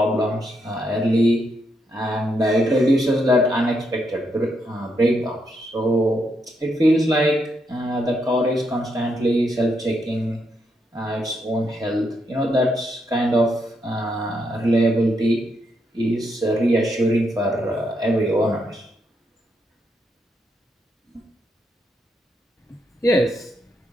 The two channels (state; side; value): normal; both; correlation 0.79